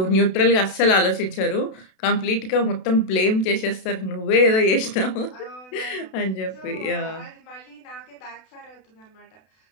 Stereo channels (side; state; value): right; late; 32 ms